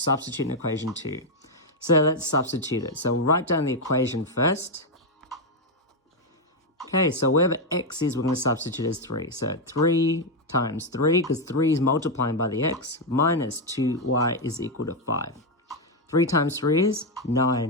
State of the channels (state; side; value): normal; both; correlation 0.03